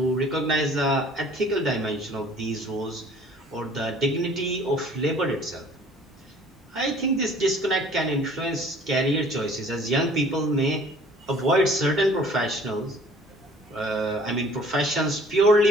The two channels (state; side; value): normal; both; correlation 0.53